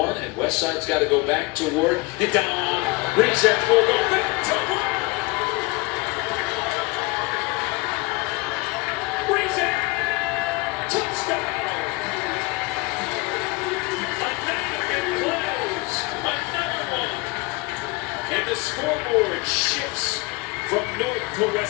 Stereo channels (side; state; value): right; quieter; 24.3 dB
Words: and Westside's got to go back to work. And down, Rizek will go back to work. Rizek, touchdown. Another big plays, another one. And the scoreboard shifts from north to